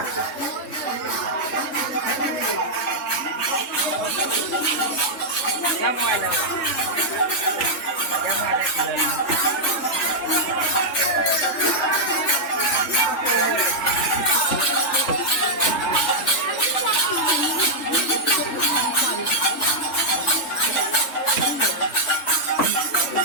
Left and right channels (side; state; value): right; late; 3.4 ms